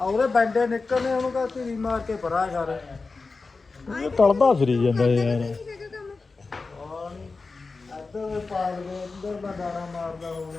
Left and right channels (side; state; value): right; quieter; 4.0 dB